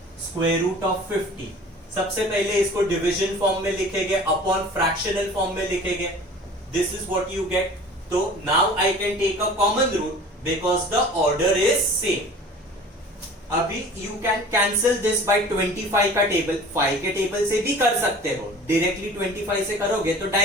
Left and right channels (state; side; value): normal; both; correlation 0.43